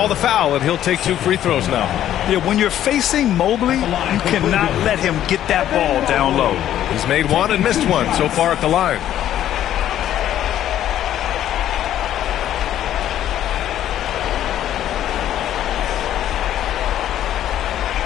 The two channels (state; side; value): quieter; right; 11.7 dB